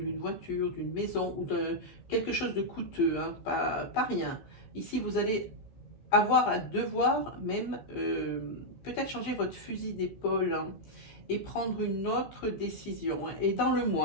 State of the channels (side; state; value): right; late; 15 ms